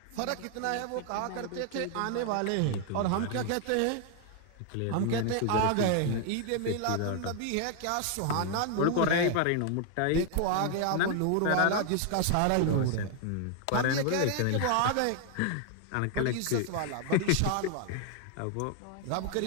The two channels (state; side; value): different; both; correlation 0.00